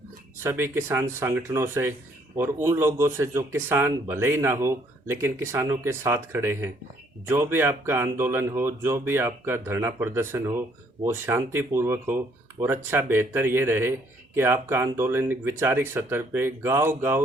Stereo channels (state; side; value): normal; both; correlation 0.65